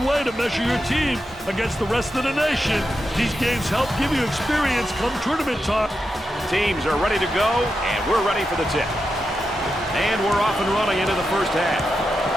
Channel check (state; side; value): normal; both; correlation 0.88